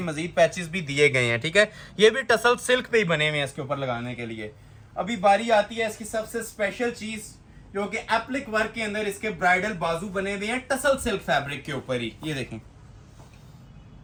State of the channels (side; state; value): both; identical; correlation 1.00